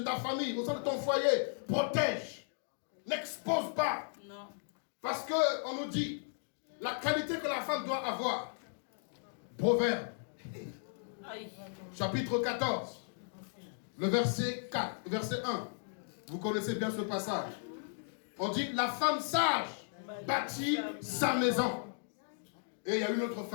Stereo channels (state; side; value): silent; right; digital silence